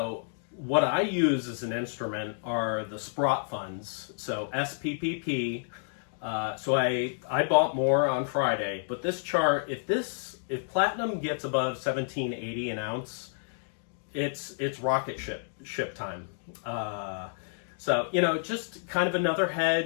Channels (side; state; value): right; silent; digital silence